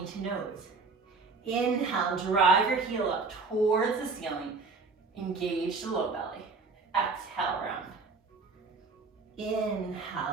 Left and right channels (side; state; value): left; quieter; 4.2 dB